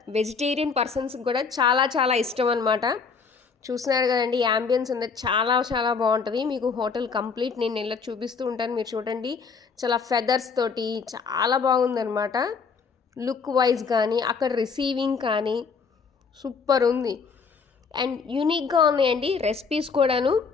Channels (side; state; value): right; quieter; 5.4 dB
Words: పర్సన్స్కి కూడా చాలా చాలా ఇష్టం అనమాట. చూస్తున్నారు కదండి, యాంబియన్స్ అనేది చాలా చాలా బాగుంటుంది. మీకు హోటల్ కంప్లీట్ నేను ఇలా చూపిస్తూ ఉంటాను, మీరు చూడండి. చాలా ఫెదర్స్ తోటి చాలా బాగుందనమాట. లుక్ వైజ్ కానీ అక్కడ రిసీవింగ్ కానీ సూపర్ ఉంది. అండ్ యూనిక్గా ఉన్నాయండి రెసిపీస్ కూడాను.